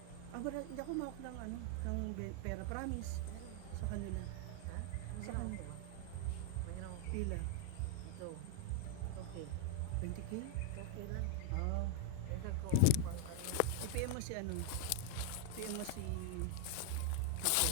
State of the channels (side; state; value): both; different; correlation -0.01